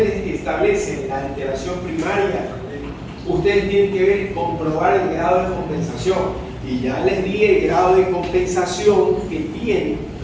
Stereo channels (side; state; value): both; identical; correlation 1.00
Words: establecen la alteración primaria, ustedes tienen que comprobar el grado de compensación. Y ya les di el grado de compensación que tiene.